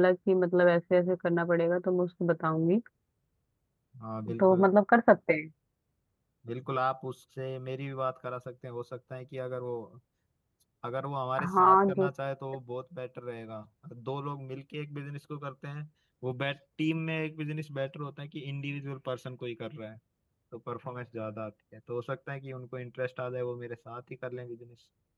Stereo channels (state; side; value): identical; both; correlation 1.00